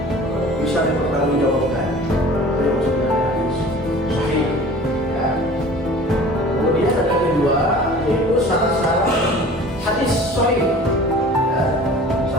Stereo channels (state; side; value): normal; both; correlation 0.44